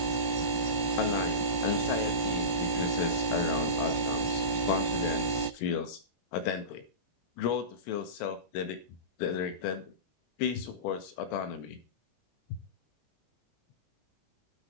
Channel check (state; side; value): late; right; 18 ms